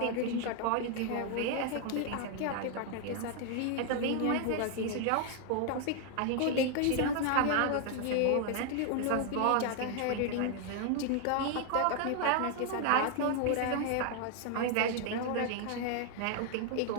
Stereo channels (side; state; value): both; different; correlation 0.00